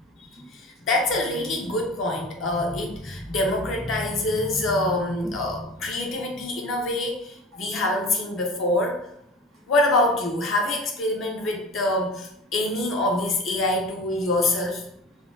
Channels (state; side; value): normal; both; correlation 0.36